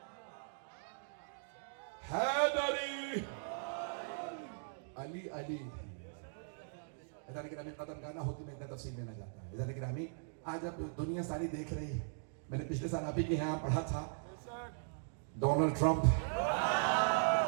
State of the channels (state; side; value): silent; left; digital silence